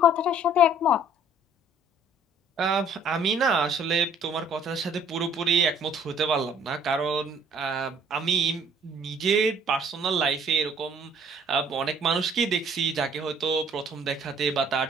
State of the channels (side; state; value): both; normal; correlation 0.57